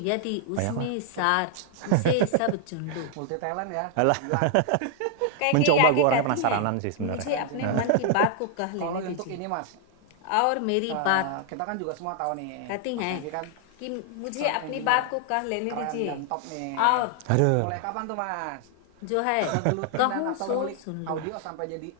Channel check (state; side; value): different; both; correlation 0.00